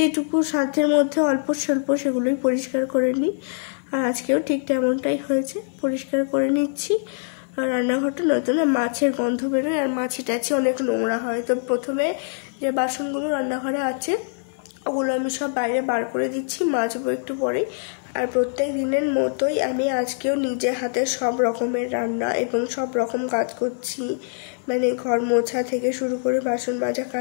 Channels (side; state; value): right; silent; 59 dB below the other